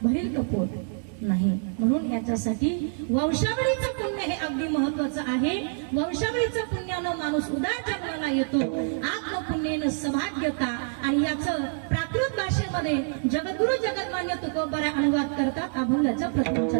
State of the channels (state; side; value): silent; left; digital silence